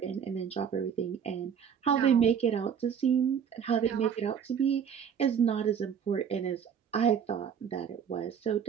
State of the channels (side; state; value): left; quieter; 7.7 dB